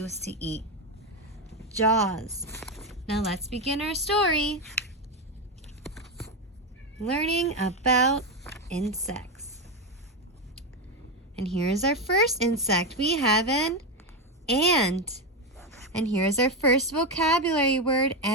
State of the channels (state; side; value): normal; both; correlation 0.11